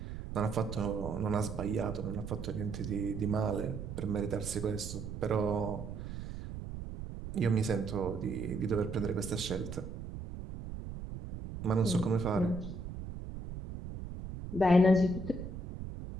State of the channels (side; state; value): right; noise; rumble, 8 dB below the sound